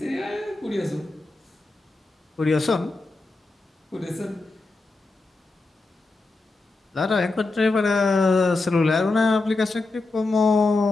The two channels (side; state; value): right; quieter; 3.3 dB